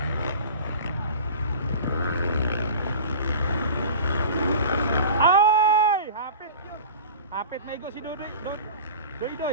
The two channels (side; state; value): both; inverted; correlation -0.37